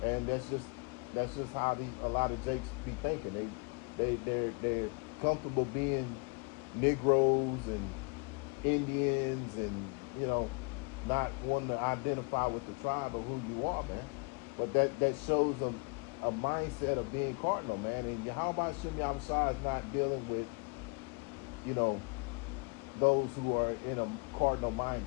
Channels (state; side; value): quieter; right; 33.8 dB